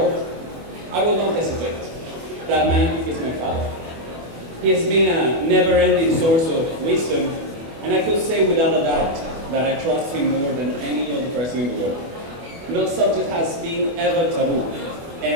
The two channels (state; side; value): late; left; 24 ms